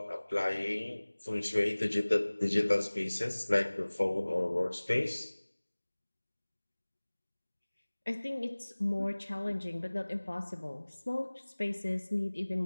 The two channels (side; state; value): both; inverted; correlation -1.00